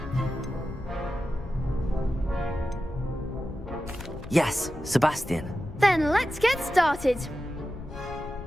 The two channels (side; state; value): left; noise; rumble, 12 dB below the sound